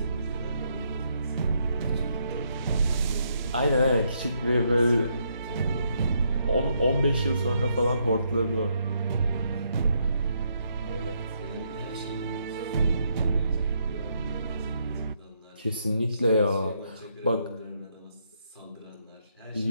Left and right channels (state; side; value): inverted; both; correlation -0.75